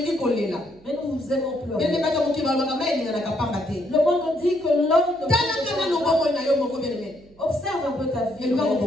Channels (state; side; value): noise; right; hum, 27 dB below the sound